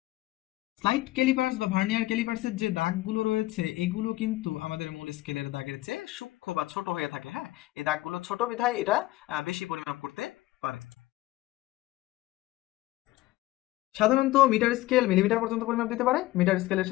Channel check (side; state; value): right; quieter; 17.7 dB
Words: স্লাইড ক্যালিপার্স বা ভার্নিয়ার ক্যালিপার্সের যে দাগগুলো রয়েছে এগুলো কিন্তু আমাদের মূল স্কেলের দাগের চেয়ে সূক্ষ্ম বা ছোট হয়ে থাকে। হ্যাঁ, এই দাগগুলো ছোট বিধায় এটা বেশি পরিমাপ করতে পারে। সাধারণত মিটার স্কেল মিলিমিটার পর্যন্ত পরিমাপ দিতে পারে। মিটার স্কেলের